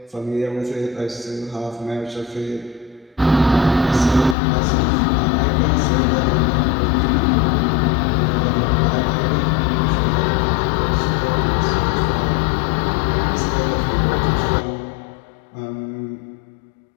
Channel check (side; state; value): right; drops out; at 4.4 s